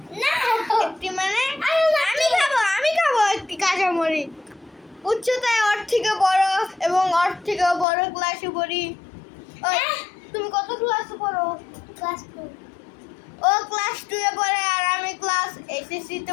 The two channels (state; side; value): drops out; right; at 7.9 s